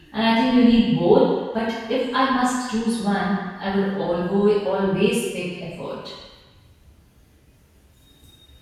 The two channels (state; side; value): identical; both; correlation 1.00